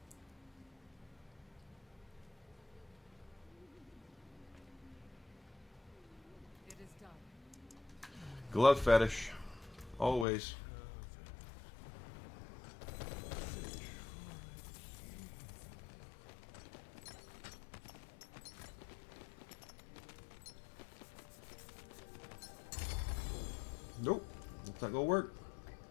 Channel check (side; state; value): right; drops out; at 10.2 s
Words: It is done. Glove fetish. Always. It's not gonna work.